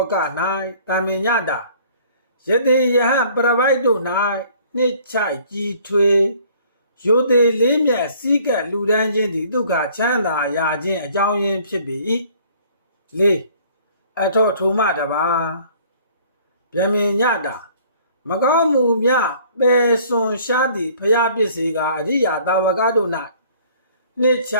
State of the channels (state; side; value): inverted; both; correlation -0.55